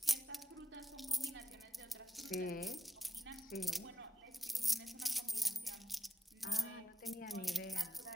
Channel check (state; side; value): normal; both; correlation 0.89